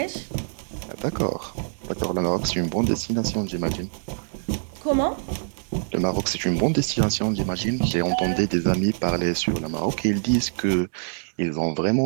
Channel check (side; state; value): left; silent; digital silence